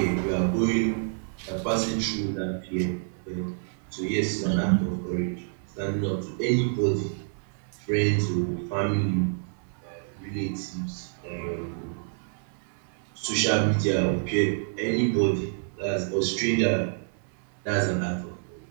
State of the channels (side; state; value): left; silent; 59 dB below the other